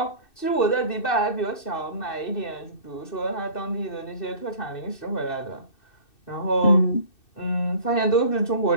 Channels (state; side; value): late; right; 2.6 ms